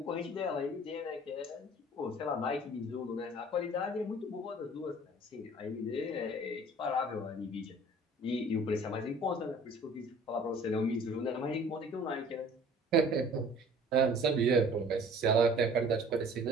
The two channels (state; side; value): normal; both; correlation 0.49